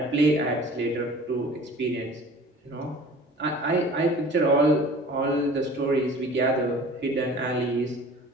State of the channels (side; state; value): both; normal; correlation 0.45